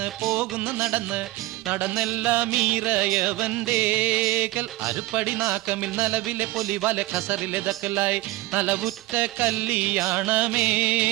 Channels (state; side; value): quieter; left; 19.0 dB